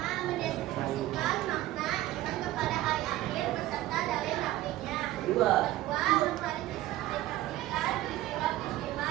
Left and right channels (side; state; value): left; quieter; 15.6 dB